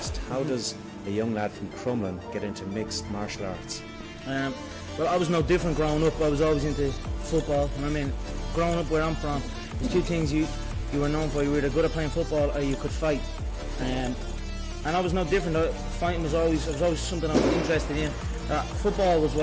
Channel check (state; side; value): identical; both; correlation 1.00